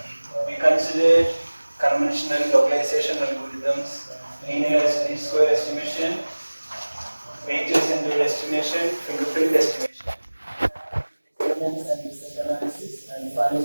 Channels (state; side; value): inverted; both; correlation -1.00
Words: we considered conventional localization algorithms, linear least square estimation, weighted center estimation, fingerprint estimation, experiments and research analysis, and